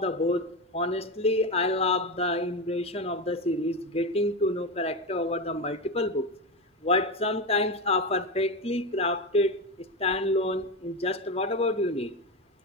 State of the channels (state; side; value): normal; both; correlation 0.17